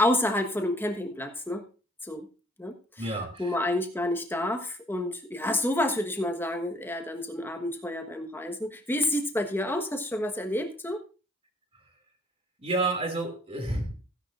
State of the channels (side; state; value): both; normal; correlation 0.60